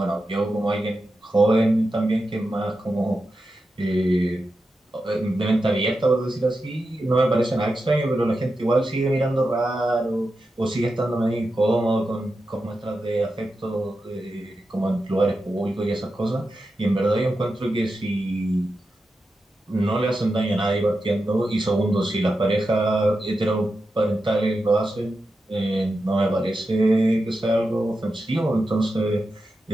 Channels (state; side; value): normal; both; correlation 0.90